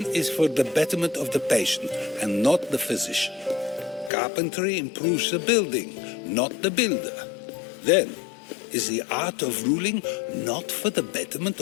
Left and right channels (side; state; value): right; drops out; at 4.1 s